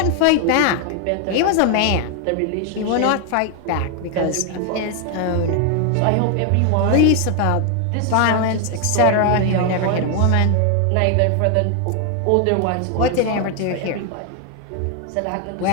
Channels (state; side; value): different; both; correlation 0.01